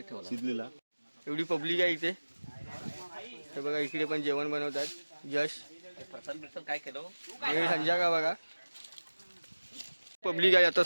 शिजलेला. एवढी पब्लिक आहे इथे. हे बघा इकडे पण जेवण बनवतात. यश काय केलं हे संजय का बघा पब्लिक आहे आता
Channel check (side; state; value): both; inverted; correlation -1.00